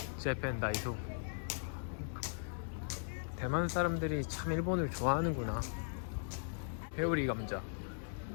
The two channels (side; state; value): right; silent; digital silence